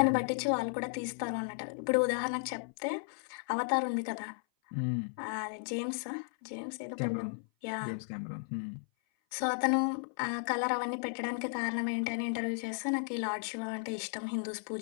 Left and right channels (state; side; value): silent; right; 55 dB below the other